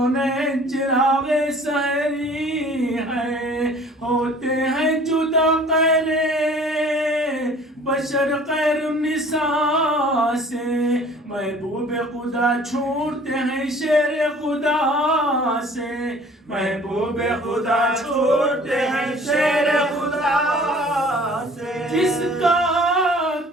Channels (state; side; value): normal; both; correlation 0.50